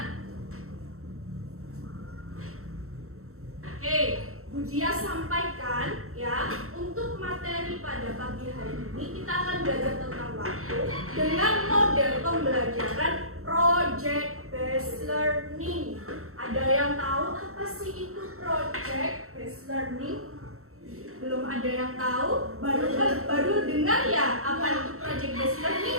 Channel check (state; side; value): late; left; 0.63 ms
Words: oke, Bu Dia sampaikan ya, untuk materi pada pagi hari ini kita akan belajar tentang waktu dengan model pembelajaran project based learning. Ada yang tahu apa sih itu project based learning? Belum ada yang tahu? Baru dengar ya apa itu project based learning